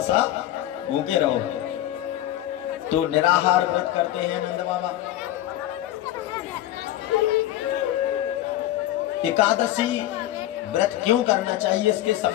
सा भूखे रहो। तो निराहार व्रत करते हैं नंद बाबा। एकादशी व्रत क्यों करना चाहिए, इसके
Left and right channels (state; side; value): quieter; right; 13.9 dB